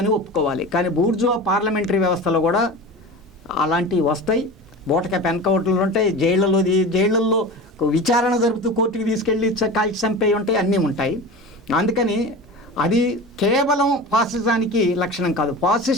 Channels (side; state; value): both; normal; correlation 0.32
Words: అని ఒప్పుకోవాలి. కానీ బూర్జువా పార్లమెంటరీ వ్యవస్థలో కూడా అలాంటివి వస్తాయి. బూటకపు ఎన్కౌంటర్లు ఉంటాయి, జైళ్ళల్లో విచారణ జరుపుతూ కోర్టుకి తీసుకెళ్ళి కాల్చి చంపేవి ఉంటాయి, అన్నీ ఉంటాయి. అందుకని అది కేవలం ఫాసిజానికి లక్షణం కాదు.